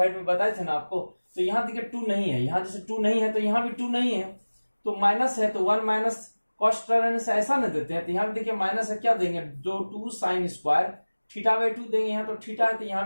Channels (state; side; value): inverted; both; correlation -1.00